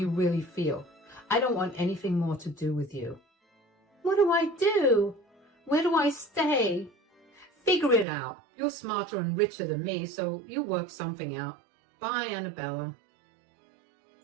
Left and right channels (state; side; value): drops out; left; at 8.1 s